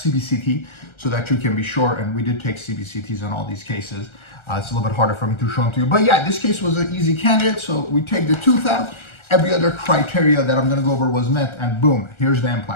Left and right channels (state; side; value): late; right; 1.3 ms